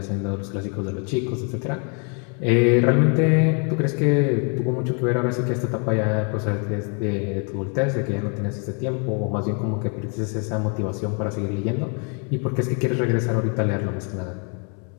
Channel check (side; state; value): right; quieter; 38.4 dB